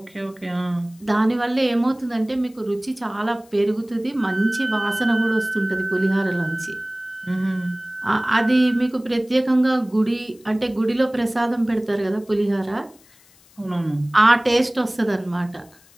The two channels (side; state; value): left; noise; hiss, 28 dB below the sound